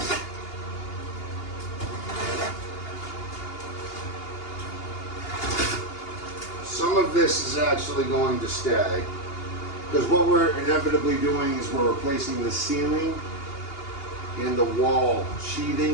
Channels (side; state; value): right; late; 2.8 ms